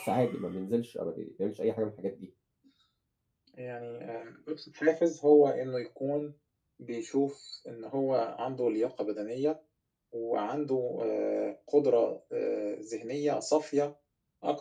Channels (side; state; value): both; identical; correlation 1.00